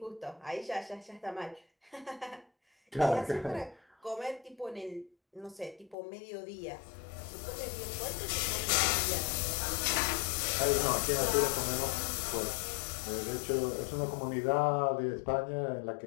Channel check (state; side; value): drops out; right; at 6.0 s